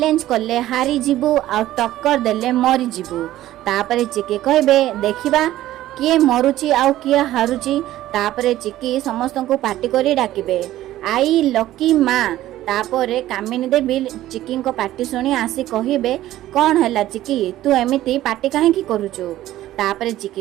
कले हारी जीवु आ टक्कर देले मरी जीवु तापरे चिक्की कहबे देखिबा किए मरुची आउ किए हारुची तापरे चिक्की समस्त को पार्टी करी डाकिबे आई लकी माँ तापरे कामिनी देवी चिक्की को पार्टी शुणी आसी कहबे कौन है चिक्की तू एमिति पार्टी काहे करुचु तापरे चिक्की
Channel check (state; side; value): quieter; left; 14.4 dB